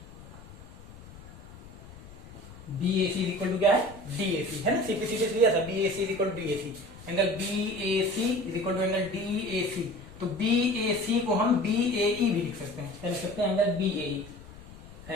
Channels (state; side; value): noise; left; rumble, 18 dB below the sound